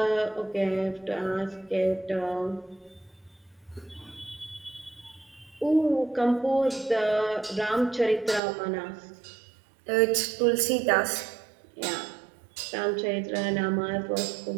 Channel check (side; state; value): left; drops out; at 8.4 s